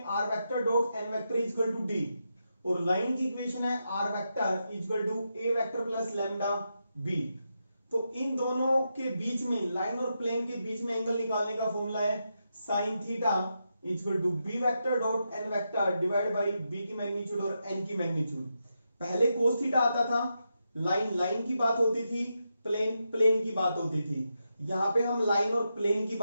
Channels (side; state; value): both; inverted; correlation -0.85